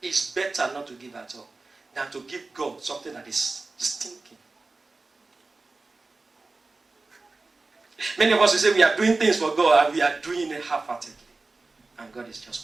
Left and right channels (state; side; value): quieter; left; 3.6 dB